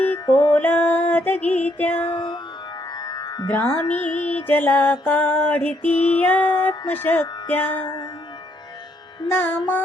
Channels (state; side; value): normal; both; correlation 0.72